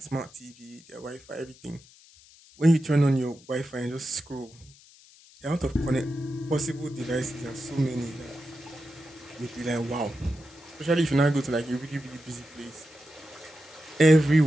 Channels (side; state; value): left; noise; hiss, 24 dB below the sound